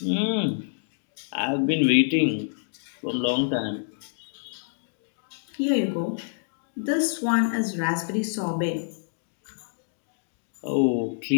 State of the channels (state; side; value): silent; right; digital silence